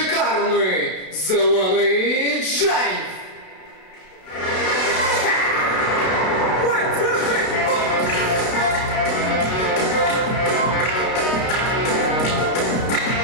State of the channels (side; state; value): right; late; 32 ms